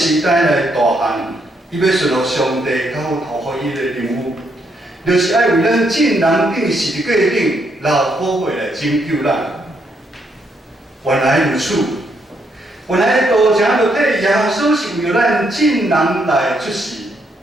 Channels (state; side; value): normal; both; correlation 0.76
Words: 代来大汉。伊要顺服上帝交托予伊的任务，就是爱为咱众人顶十字架顶流宝血来拯救咱。原来如此，原来道成肉体耶稣是为了咱众人来出世。